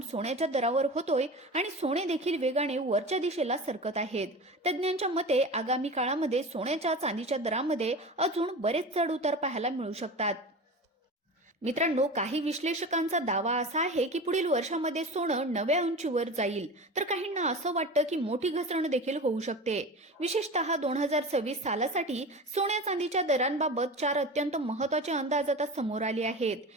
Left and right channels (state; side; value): normal; both; correlation 0.31